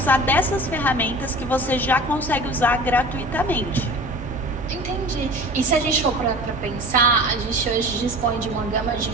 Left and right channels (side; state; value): both; normal; correlation 0.39